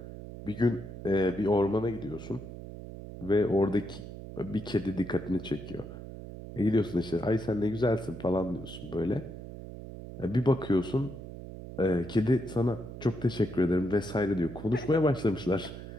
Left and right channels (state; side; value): noise; right; hum, 11 dB below the sound